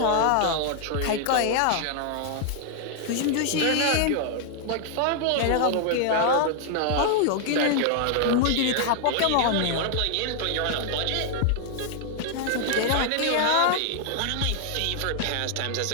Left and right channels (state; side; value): different; both; correlation 0.00